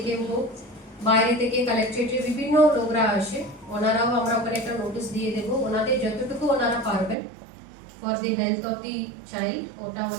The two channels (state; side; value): drops out; left; at 7.2 s